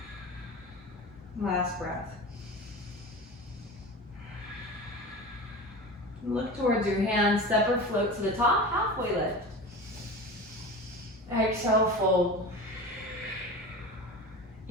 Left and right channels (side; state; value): both; normal; correlation 0.32